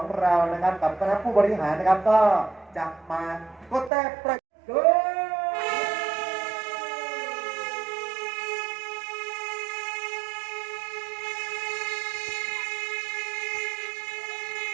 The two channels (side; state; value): left; drops out; at 3.9 s